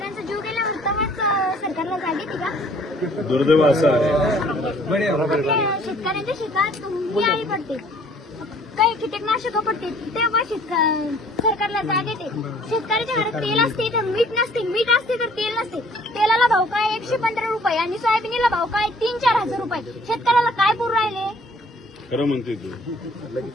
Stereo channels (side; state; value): both; normal; correlation 0.57